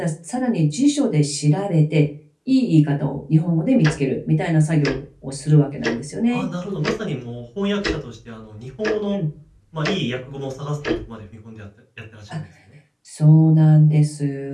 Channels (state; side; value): identical; both; correlation 1.00